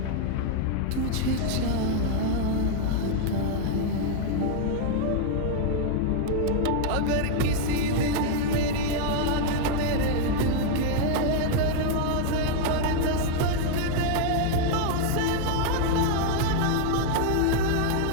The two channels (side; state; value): both; different; correlation 0.00